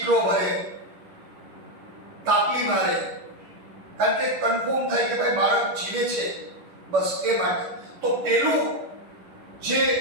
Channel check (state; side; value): late; left; 10 ms